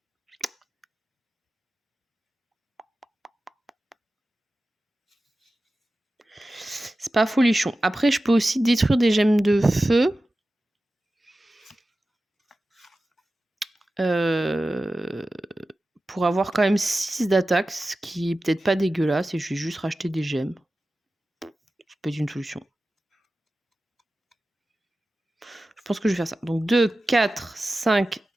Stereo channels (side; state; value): both; normal; correlation 0.95